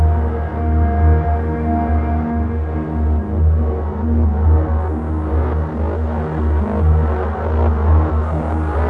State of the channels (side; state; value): both; identical; correlation 1.00